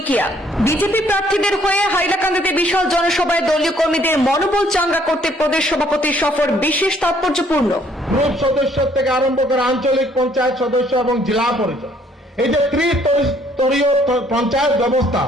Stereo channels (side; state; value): both; normal; correlation 0.64